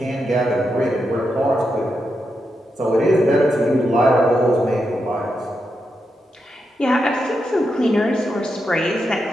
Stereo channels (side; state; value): both; normal; correlation 0.85